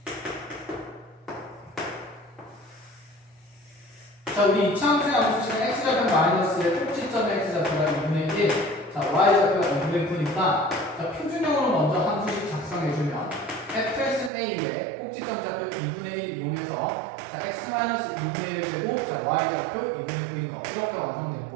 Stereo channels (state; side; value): drops out; left; at 14.3 s